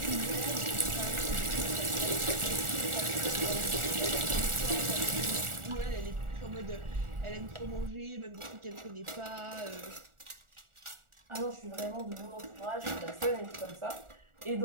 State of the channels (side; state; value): left; late; 1.4 ms